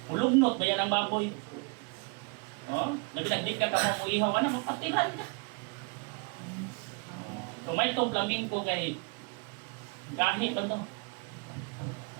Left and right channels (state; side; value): quieter; left; 33.1 dB